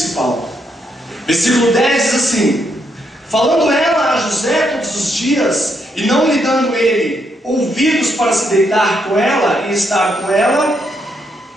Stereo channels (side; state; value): both; normal; correlation 0.77